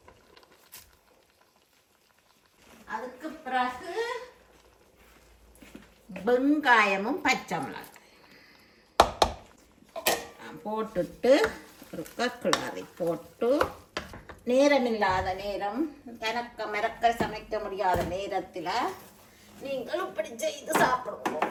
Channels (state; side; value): identical; both; correlation 1.00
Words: அதுக்கு பிறகு வெங்காயமும் பச்சை மிளகாய் போட்டுட்டு ஒரு கிளறி போட்டு நேரமில்லாத நேரம் மிரக்க சமைக்க முடியாத நேரத்தில் நீங்கள் இப்படி செய்து சாப்பிடுவோம்.